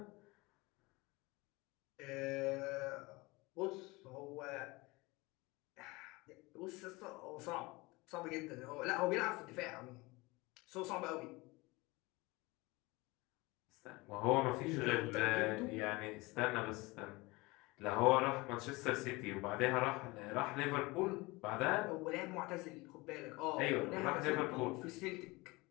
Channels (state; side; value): quieter; right; 23.3 dB